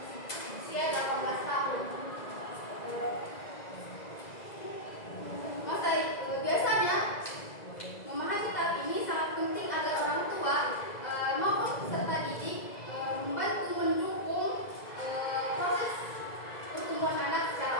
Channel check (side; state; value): right; late; 2.0 ms